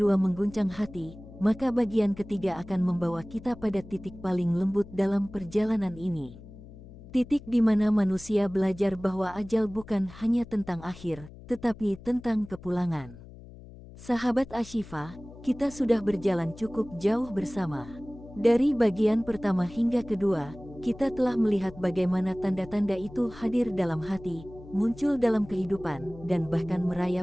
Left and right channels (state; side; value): noise; left; hum, 18 dB below the sound